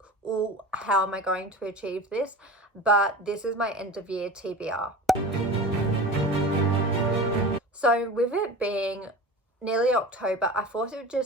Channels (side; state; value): both; normal; correlation 0.33